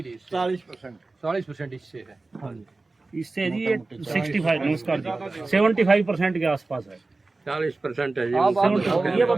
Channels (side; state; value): left; quieter; 3.4 dB